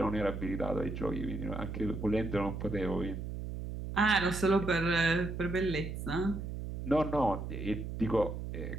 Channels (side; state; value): right; noise; hum, 6 dB below the sound